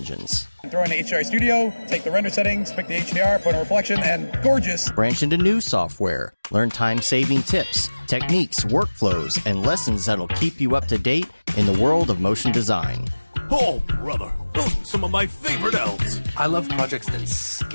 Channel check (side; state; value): both; inverted; correlation -1.00